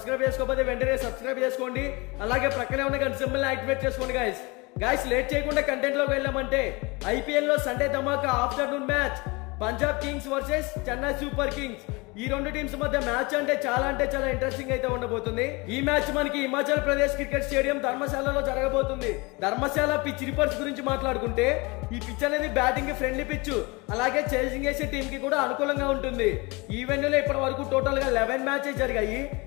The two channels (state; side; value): quieter; right; 26.1 dB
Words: చేసుకోకపోతే వెంటనే సబ్స్క్రైబ్ చేసుకోండి. అలాగే ప్రక్కనే ఉన్న గంట సింబల్ యాక్టివేట్ చేసుకోండి. గైస్ లేట్ చేయకుండా కంటెంట్ లోకి వెళ్ళామంటే ఐపీఎల్ లో సండే ధమాకా afternoon match Punjab kings versus Chennai super kings. ఈ రెండు టీమ్స్ మధ్య మ్యాచ్ అంటే చాలా ఇంట్రెస్టింగ్ అయితే ఉండబోతుంది. ఈ మ్యాచ్ మనకి హిమాచల్ ప్రదేశ్ క్రికెట్ స్టేడియం ధర్మశాలలో జరగబోతుంది. ధర్మశాల పిచ్ రిపోర్ట్స్ గురించి మాట్లాడుకుంటే ఈ పిచ్ అనేది బ్యాటింగ్ కి ఫ్రెండ్లీ పిచ్, అలాగే చేసింగ్ చేసే టీం కి కూడా అనుకూలంగా ఉంటుంది. ఈ వెన్యూలో ఇప్పటి వరకు టోటల్ గా 11 మ్యాచెస్ జరిగాయి.